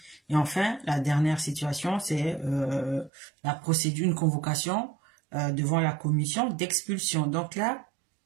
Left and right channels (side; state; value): left; drops out; at 3.1 s